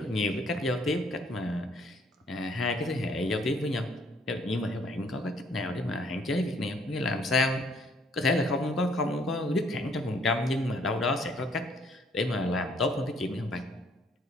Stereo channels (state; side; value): normal; both; correlation 0.64